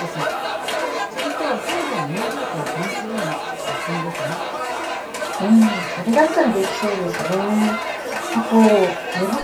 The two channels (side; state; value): both; identical; correlation 1.00